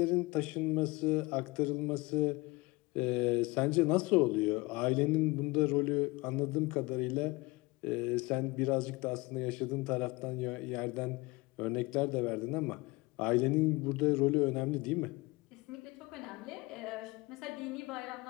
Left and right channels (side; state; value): right; quieter; 23.6 dB